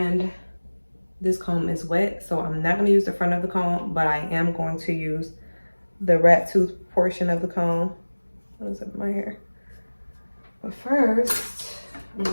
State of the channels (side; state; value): both; inverted; correlation -1.00